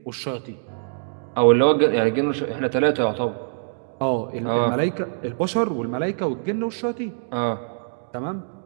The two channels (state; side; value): silent; left; digital silence